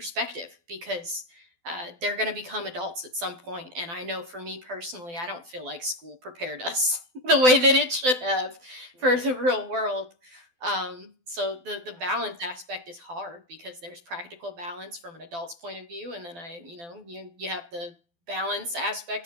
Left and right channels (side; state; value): left; late; 12 ms